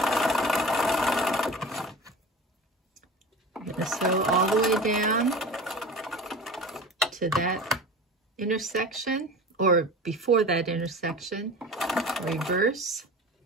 I'm going to sew all the way down to that intersection, or before that intersection. Reverse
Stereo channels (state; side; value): normal; both; correlation 0.35